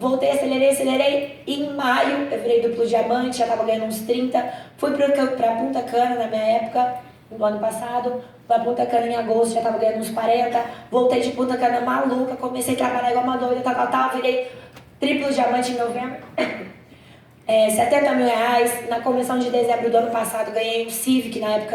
acelerei. E em maio eu virei duplo diamante, já tava ganhando uns 30. Fui pra Punta Cana na minha época, no ano passado. Pra Punta Cana em agosto, já tava ganhando uns 40. Voltei de Punta Cana maluca, comecei a trabalhar igual uma doida, tal. Virei triplo diamante em novembro. 70 mil reais. Na convenção de dezembro do ano passado ganhei um Civic, na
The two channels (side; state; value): both; identical; correlation 1.00